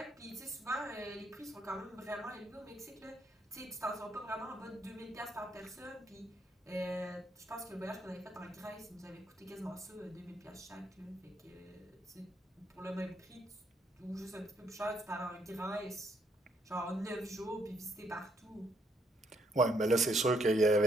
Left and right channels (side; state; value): both; normal; correlation 0.73